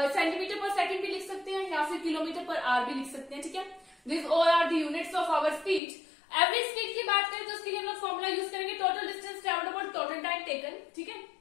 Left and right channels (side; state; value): right; drops out; at 5.8 s